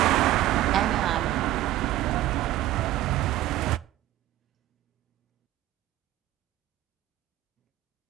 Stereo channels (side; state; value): left; quieter; 14.5 dB